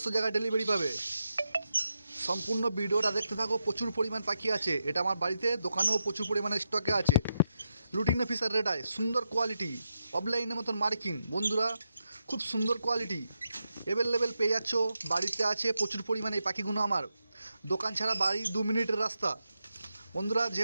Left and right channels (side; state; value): both; inverted; correlation -0.85